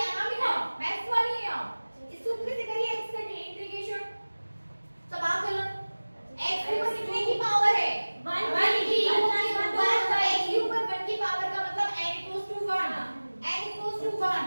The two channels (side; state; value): both; inverted; correlation -1.00